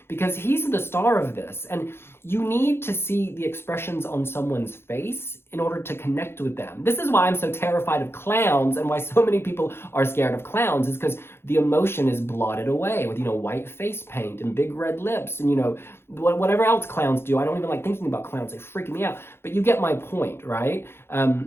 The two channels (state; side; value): late; right; 0.11 ms